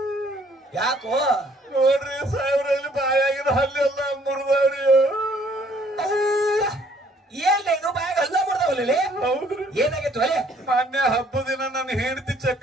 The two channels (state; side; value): normal; both; correlation 0.62